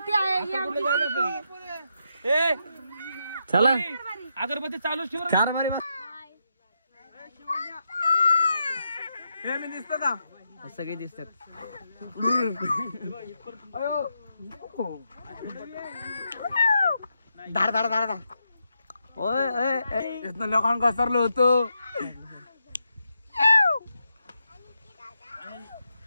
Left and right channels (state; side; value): inverted; both; correlation -0.83